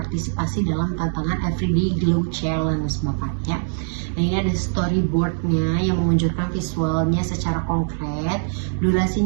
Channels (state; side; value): silent; left; digital silence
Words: dalam tantangan Everyday Glow Challenge, Bapak ya. Nah, ini ada storyboardnya yang menunjukkan visualnya secara konkret.